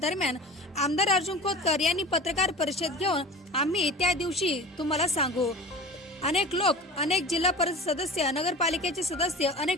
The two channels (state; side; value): normal; both; correlation 0.36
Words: दरम्यान आमदार अर्जुन खोतकर यांनी पत्रकार परिषद घेऊन आम्ही त्या दिवशी तुम्हाला सांगू, अनेक लोक, अनेक जिल्हा परिषद सदस्य, नगरपालिकेचे सदस्य,